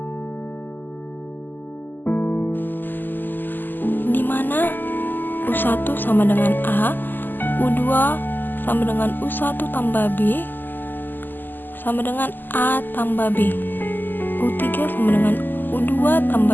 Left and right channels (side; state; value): right; late; 0.089 ms